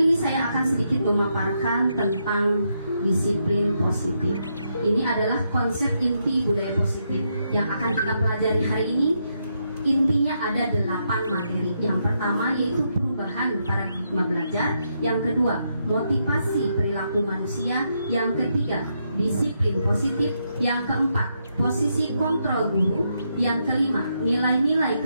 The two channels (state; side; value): inverted; both; correlation -0.80